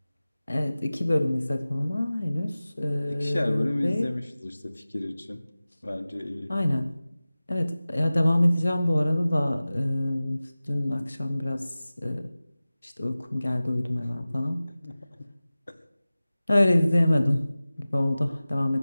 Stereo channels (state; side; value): inverted; both; correlation -0.97